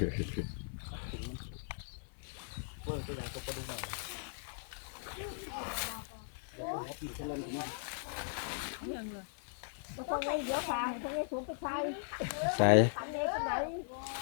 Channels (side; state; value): right; silent; 52 dB below the other